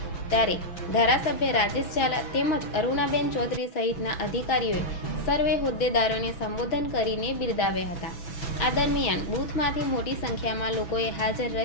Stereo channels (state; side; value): late; right; 6.1 ms